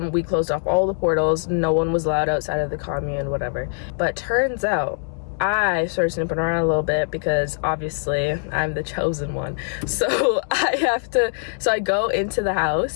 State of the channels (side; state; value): right; silent; digital silence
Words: We closed off all the portals. No one was allowed outside of the commune, whatever. But turns out I started snooping around a little bit because obviously I'm the chosen one. So I go into the